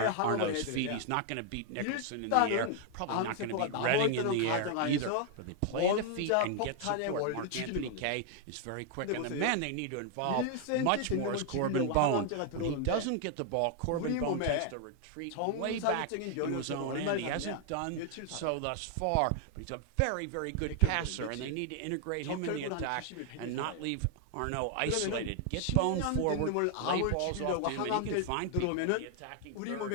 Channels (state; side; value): different; both; correlation 0.00